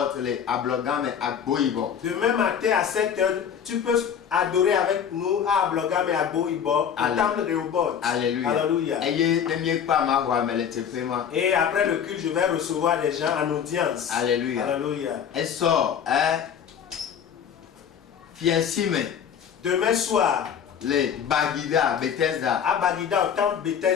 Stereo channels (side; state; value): right; quieter; 8.1 dB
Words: Demain matin à 7h, tu peux adorer avec nous à Ablogam et à Boibo, au temple Rehoboth. Alléluia. Alléluia. Et après le culte, je vais recevoir des gens en audience. Alléluia. Alléluia. Demain soir, les Bagida, Bethesda. À Bagida, au temple